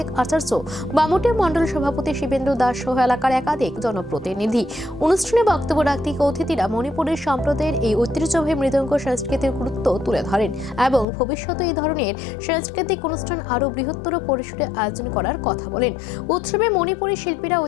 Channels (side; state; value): right; drops out; at 11.1 s